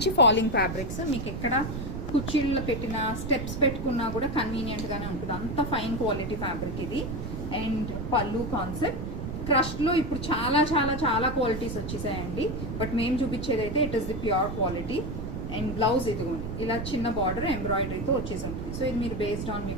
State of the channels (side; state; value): right; noise; rumble, 6 dB below the sound